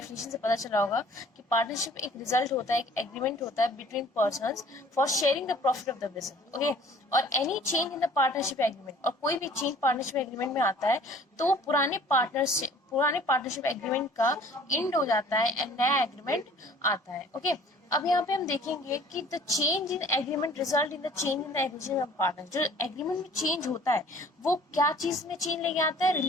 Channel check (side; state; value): both; normal; correlation 0.52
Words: से पता चला होगा कि partnership एक result होता है, एक एग्रीमेंट होता है between persons for sharing the profit of the business. Okay, और any change in the partnership agreement, और कोई भी चेंज पार्टनरशिप एग्रीमेंट में आता है तो पुराने पार्टनरशिप एग्रीमेंट का एंड हो जाता है एंड नया एग्रीमेंट आता है. ओके, अब यहाँ पे हम देखेंगे कि the change in agreement result in the change in the agreement of partner. जो एग्रीमेंट में चेंज होता है वो क्या चीज में चेंज लेके आता है,